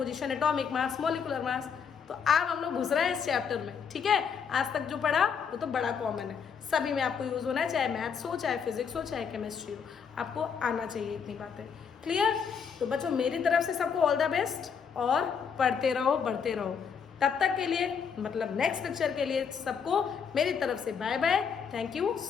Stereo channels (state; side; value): quieter; right; 6.7 dB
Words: atomic mass, molecular mass. तो अब हम लोग घुस रहे हैं इस चैप्टर में। ठीक है, आज तक जो पढ़ा वो तो बड़ा कॉमन है, सभी में आपको यूज होना है, चाहे मैथ्स हो, चाहे फिजिक्स हो, चाहे केमिस्ट्री हो, आपको आना चाहिए इतनी बातें। क्लियर? तो बच्चों मेरी तरफ से सबको ऑल द बेस्ट, और पढ़ते रहो, बढ़ते रहो। तब तक के लिए, मतलब नेक्स्ट लेक्चर के लिए सबको मेरी तरफ से bye bye. Thank you